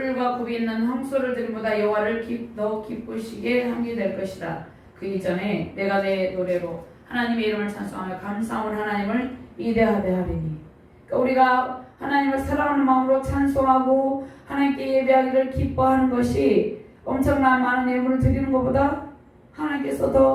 굽이 있는 황소를 드림보다 여호와를 더 기쁘시게 함이 될 것이다. 그 이전에 내가 내 노래로 하나님의 이름을 찬송하며 감사함을 하나님을 이대하되 하리니. 그러니까 우리가 하나님을 사랑하는 마음으로 찬송하고 하나님께 예배하기를 기뻐하는 것이 엄청난 많은 예물을 드리는 것보다 하나님께서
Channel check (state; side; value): identical; both; correlation 1.00